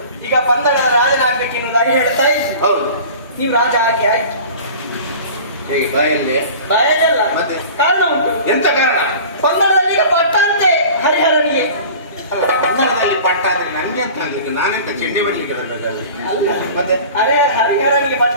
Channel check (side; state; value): both; inverted; correlation -0.41